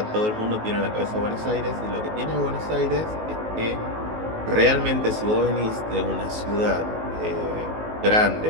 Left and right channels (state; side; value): late; left; 19 ms